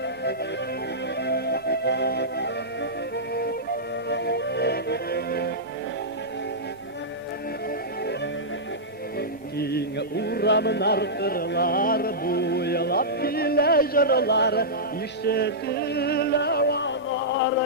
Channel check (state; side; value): normal; both; correlation -0.14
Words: King uğramın arkırlar, buylap bile jırlar, işitile valar